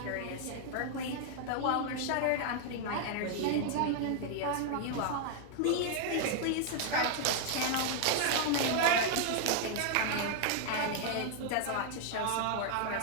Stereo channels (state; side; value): different; both; correlation 0.00